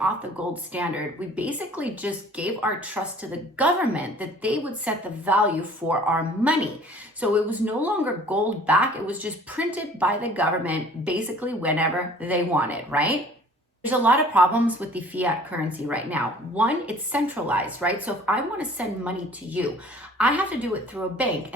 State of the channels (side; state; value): both; normal; correlation 0.51